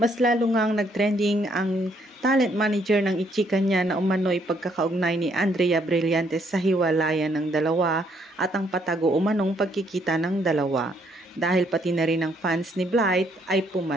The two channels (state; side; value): normal; both; correlation 0.70